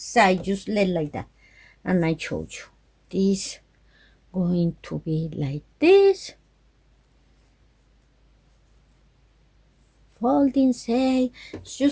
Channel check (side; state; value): both; identical; correlation 1.00